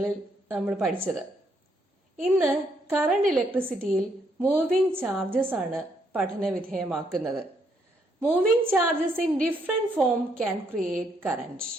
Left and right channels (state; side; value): normal; both; correlation 0.73